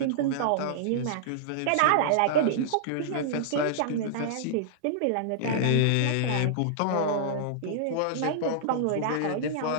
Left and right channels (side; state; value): both; different; correlation -0.02